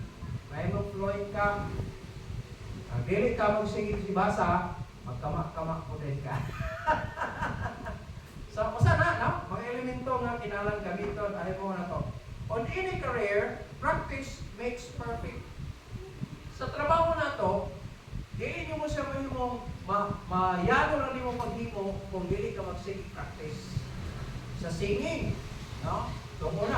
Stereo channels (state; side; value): identical; both; correlation 1.00